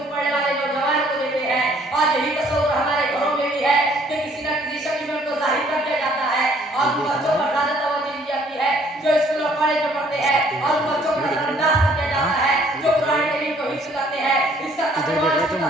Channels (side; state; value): both; normal; correlation 0.61